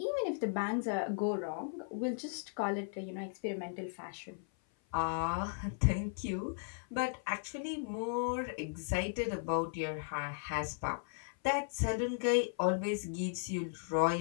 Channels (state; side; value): silent; right; 53 dB below the other